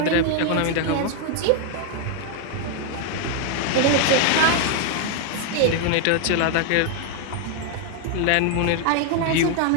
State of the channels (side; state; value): both; different; correlation 0.00